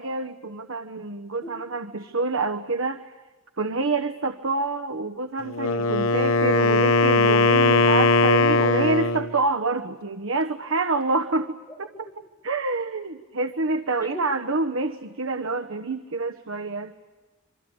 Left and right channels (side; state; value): both; normal; correlation -0.13